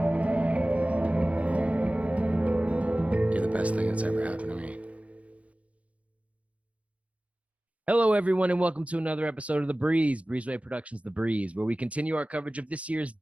You're the best thing that's ever happened to me. Hello, everyone, and welcome to another episode of The Breeze, Breezeway Productions' The Breeze, where we continue our coverage of this year's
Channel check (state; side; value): late; left; 0.065 ms